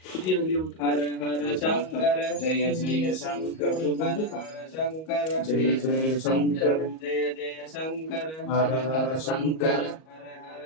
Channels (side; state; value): right; late; 38 ms